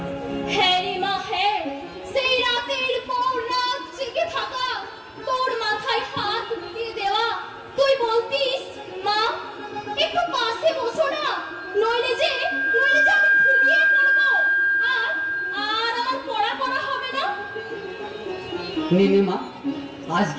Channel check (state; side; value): identical; both; correlation 1.00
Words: হ্যাঁ রে মা, হ্যাঁ। সেই রাতের পর রাত জেগে থাকা, তোর মাথায় হাত বুলিয়ে দেওয়া, তুই বলতিস মা একটু পাশে বসো না, নইলে যে আমি ঘুমিয়ে পড়বো, আর আর আমার পড়া হবে না। নে মা,